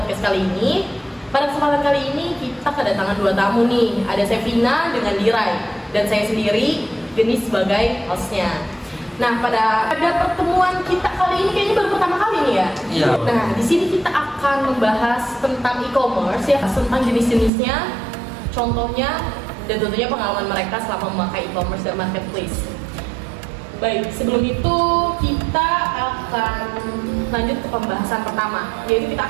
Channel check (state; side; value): drops out; left; at 17.5 s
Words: kali ini. Pada kesempatan kali ini kita kedatangan dua tamu nih. Ada Sevina dengan Diray dan saya sendiri, Geni sebagai hostnya. Nah, pada pertemuan kita kali ini kayaknya baru pertama kali nih ya. Iya. Nah, di sini kita akan membahas tentang e-commerce ya, tentang jenis-jenisnya, contohnya, dan tentunya pengalaman mereka selama memakai e-commerce dan marketplace. Baik, sebelum itu kita akan lanjut ke pembahasan pertama, yaitu kita